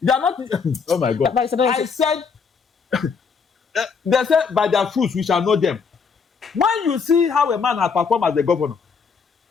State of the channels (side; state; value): right; quieter; 5.6 dB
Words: They are not. Oh my God. I said. They said by their fruits we shall know them. When you see how a man has performed as the governor,